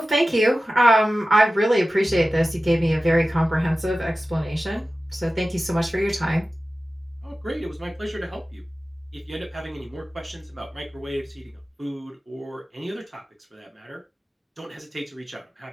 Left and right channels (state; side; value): normal; both; correlation 0.95